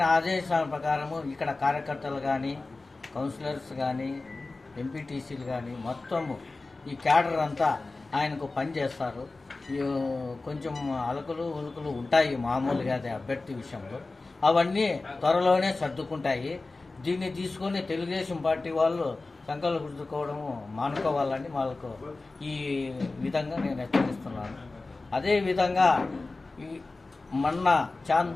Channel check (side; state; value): right; quieter; 3.4 dB